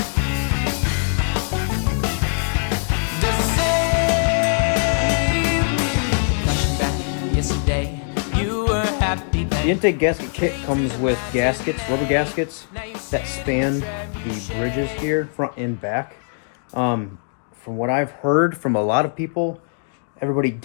The same. Flashing back yesterday, you were happy then. The intake gasket kit comes with gaskets, rubber gaskets, that span the bridges here, front and back. From what I've heard from a lot of people, everybody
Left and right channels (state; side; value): silent; right; 63 dB below the other